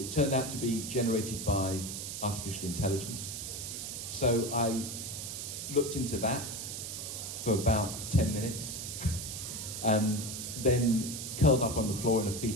turned out to be generated by artificial intelligence. So I looked into that for about 10 minutes, and then curled up on the floor in a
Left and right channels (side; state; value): right; noise; hiss, 6 dB below the sound